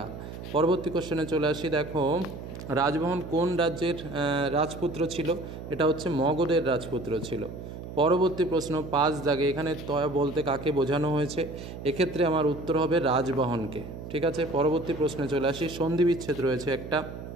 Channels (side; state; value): right; noise; hum, 11 dB below the sound